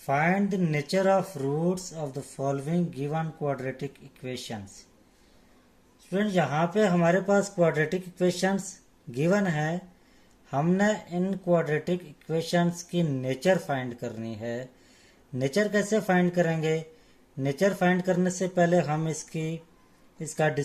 the nature of roots of the following given quadratic equations. Student, यहाँ पे हमारे पास क्वाड्रेटिक इक्वेशंस गिवन है। हमने इन क्वाड्रेटिक इक्वेशंस की नेचर फाइंड करनी है। नेचर कैसे फाइंड करेंगे? नेचर फाइंड करने से पहले हम इसका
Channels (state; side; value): identical; both; correlation 1.00